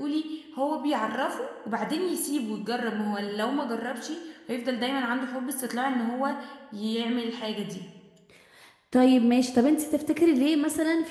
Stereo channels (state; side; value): identical; both; correlation 1.00